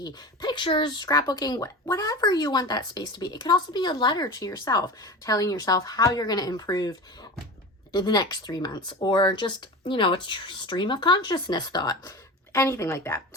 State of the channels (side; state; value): both; normal; correlation 0.30